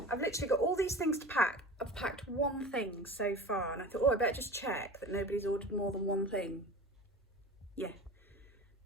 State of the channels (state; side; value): normal; both; correlation 0.35